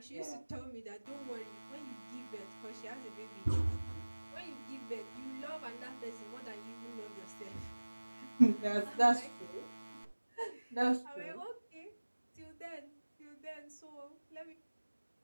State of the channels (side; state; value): both; inverted; correlation -1.00